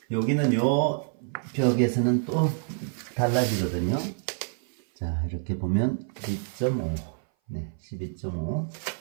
여기는 요 벽에서는 또 달라지거든요. 자, 이렇게 보면 12.5. 네, 12.5.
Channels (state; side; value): silent; left; 57 dB below the other